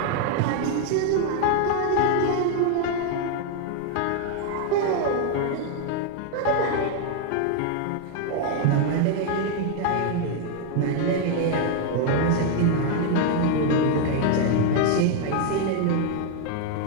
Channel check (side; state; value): both; different; correlation 0.00